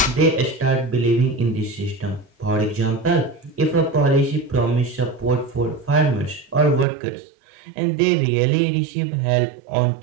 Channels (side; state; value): left; drops out; at 6.9 s